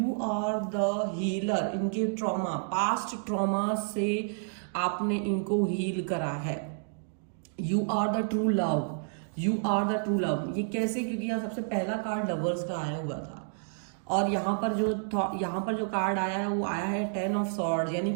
आर द हीलर। इनके ट्रॉमा, पास्ट ट्रॉमा से आपने इनको हील करा है। You are the true love, you are the true love. ये कैसे? क्योंकि यहाँ सबसे पहला कार्ड लवर्स का आया हुआ था, और यहाँ पर जो कार्ड आया है वो आया है 10 ऑफ सॉर्ड्स। यानी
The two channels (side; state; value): left; silent; digital silence